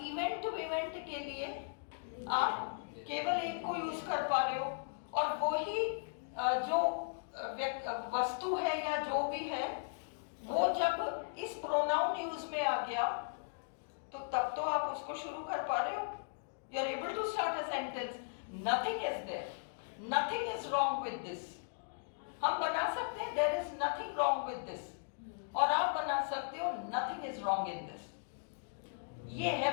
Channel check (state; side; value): silent; right; digital silence